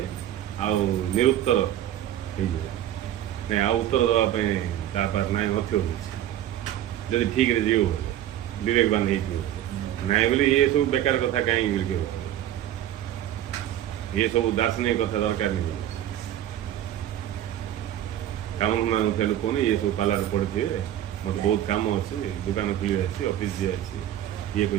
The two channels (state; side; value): quieter; left; 12.1 dB